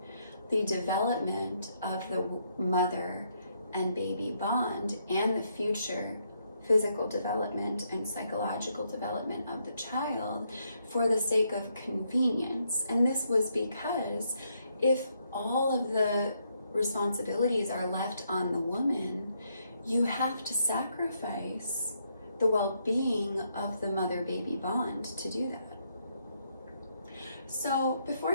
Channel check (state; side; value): inverted; both; correlation -0.76